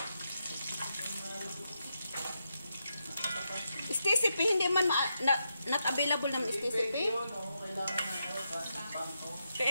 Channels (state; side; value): inverted; both; correlation -0.84